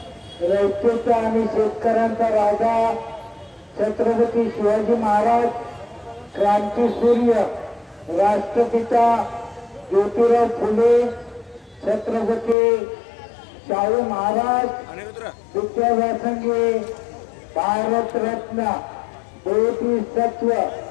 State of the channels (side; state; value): right; drops out; at 12.6 s